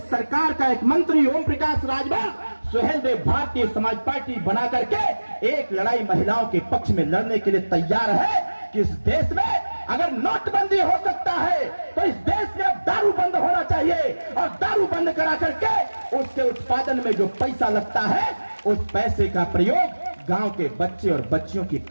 सरकार का एक मंत्री ओम प्रकाश राजभर सुहेलदेव भारतीय समाज पार्टी बना करके एक लड़ाई महिलाओं के पक्ष में लड़ने के लिए तैयार है कि इस देश में अगर नोटबंदी हो सकता है तो इस देश में अब दारू बंद होना चाहिए और दारू बंद करा करके उसके उत्पादन में जो पैसा लगता है उस पैसे का प्रयोग गांव के बच्चे और बच्चियों की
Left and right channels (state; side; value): inverted; both; correlation -1.00